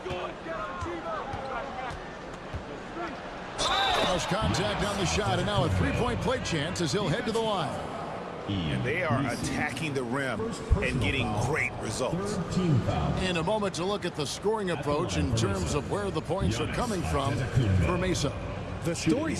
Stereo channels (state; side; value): identical; both; correlation 1.00